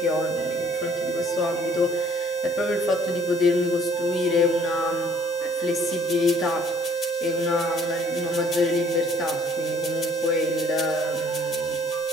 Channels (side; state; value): both; normal; correlation 0.59